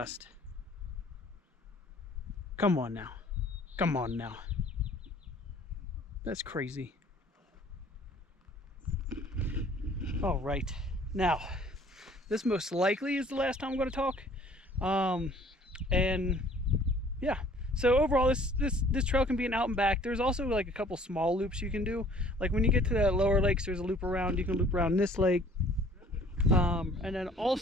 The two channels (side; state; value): both; normal; correlation 0.55